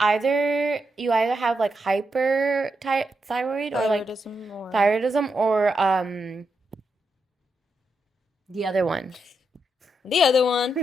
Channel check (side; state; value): both; normal; correlation 0.84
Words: either have like hyperthyroid or like thyroidism or the other one. The other one.